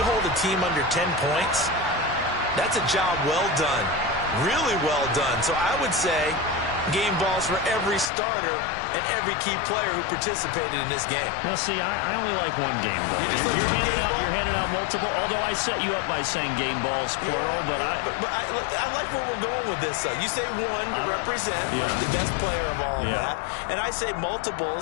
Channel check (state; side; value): drops out; right; at 8.1 s